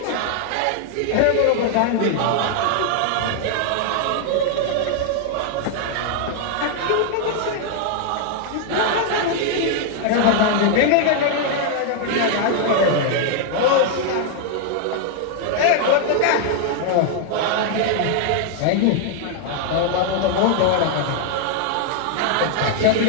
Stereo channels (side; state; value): both; different; correlation 0.00